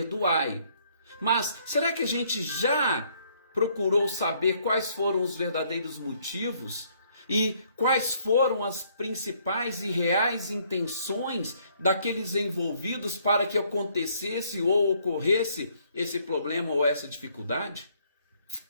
Mas será que a gente já procurou saber quais foram os verdadeiros motivos? E quais foram as principais e reais intenções daqueles envolvidos para que acontecesse ou ocorresse esse problema ou essa dificuldade?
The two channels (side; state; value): both; inverted; correlation -0.66